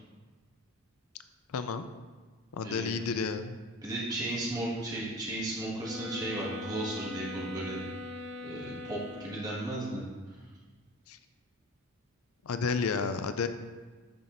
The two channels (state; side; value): normal; both; correlation 0.34